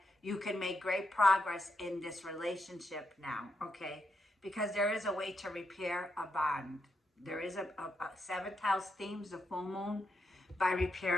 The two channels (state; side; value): normal; both; correlation 0.82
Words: you can make great progress in this relationship now, okay? Because there is a way to repair a bond. There is a 7th house themes, the full moon, by